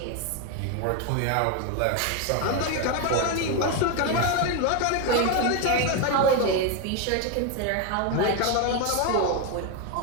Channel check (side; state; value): both; different; correlation 0.02